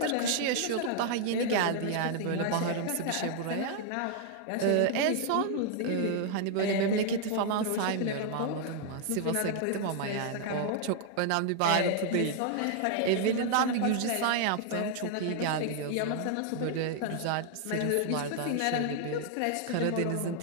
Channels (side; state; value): both; different; correlation 0.00